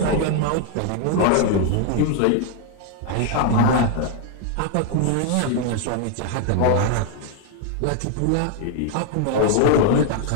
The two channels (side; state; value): both; different; correlation 0.00